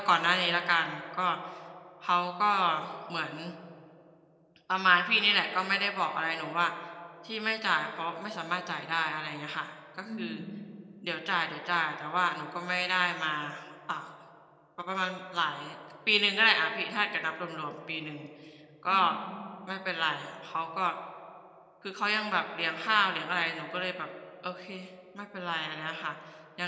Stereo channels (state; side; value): identical; both; correlation 1.00